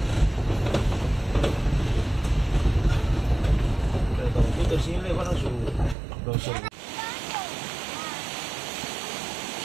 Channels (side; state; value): left; drops out; at 6.0 s